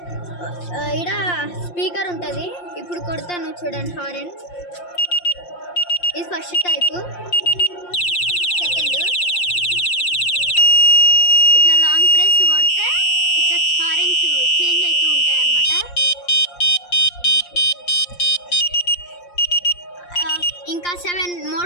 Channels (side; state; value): right; late; 5.7 ms